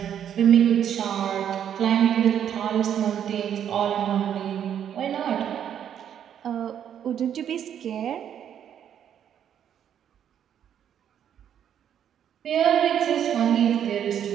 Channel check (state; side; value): quieter; left; 9.4 dB